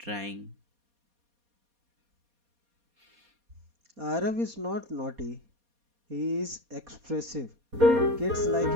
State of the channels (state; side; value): late; left; 4.2 ms